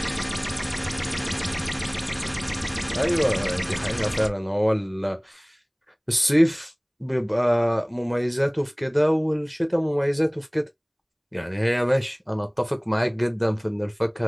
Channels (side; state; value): both; identical; correlation 1.00